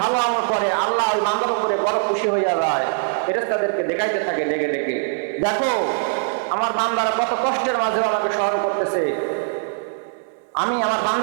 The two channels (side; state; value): left; silent; 64 dB below the other